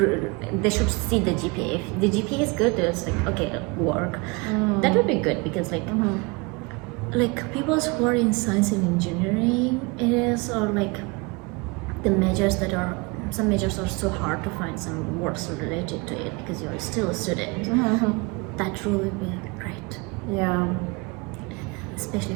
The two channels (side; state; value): left; quieter; 27.6 dB